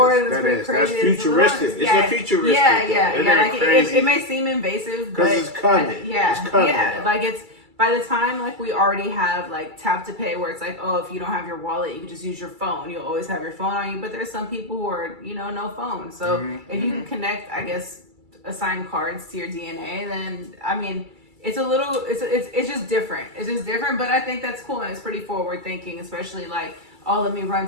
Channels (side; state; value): left; late; 2.3 ms